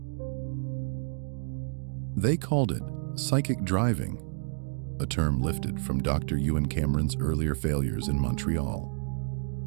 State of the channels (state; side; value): silent; left; digital silence